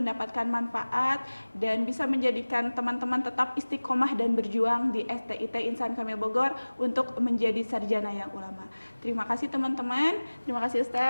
manfaat dan bisa menjadikan teman-teman tetap istiqomah dan berjuang di STIT Insan Kamil Bogor untuk menjadi sarjana yang ulama. Terima kasih teman-teman, terima kasih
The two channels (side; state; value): both; inverted; correlation -1.00